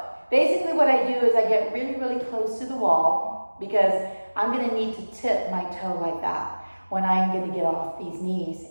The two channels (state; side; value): inverted; both; correlation -1.00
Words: basically what I do is I get really, really close to the wall because I'm gonna need to tip my toe like that when I'm gonna get off these knees